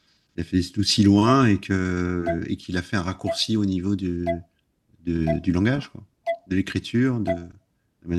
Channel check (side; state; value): both; identical; correlation 1.00